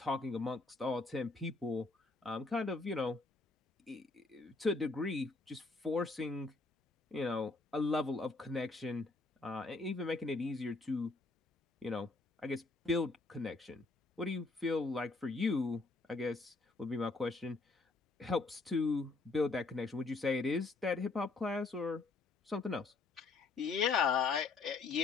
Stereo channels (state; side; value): quieter; right; 3.7 dB